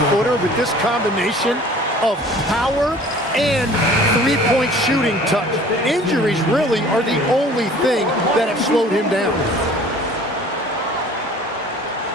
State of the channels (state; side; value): normal; both; correlation 0.48